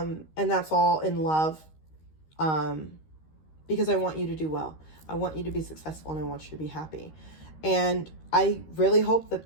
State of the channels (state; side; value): late; right; 13 ms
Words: that's all in love. Because I want you to do well. I want you to be successful, and I want you to be happy. And I really hope that